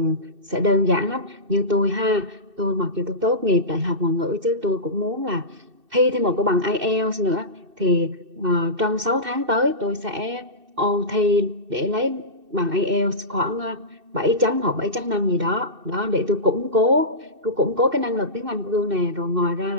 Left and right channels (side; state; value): left; late; 2.6 ms